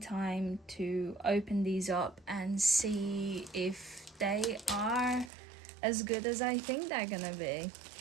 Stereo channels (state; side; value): drops out; left; at 5.3 s